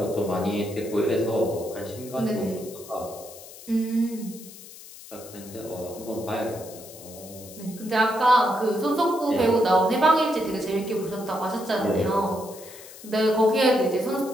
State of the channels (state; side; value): noise; left; hiss, 17 dB below the sound